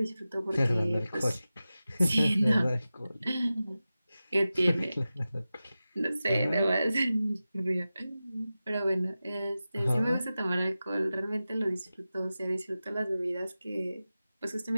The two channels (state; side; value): inverted; both; correlation -0.95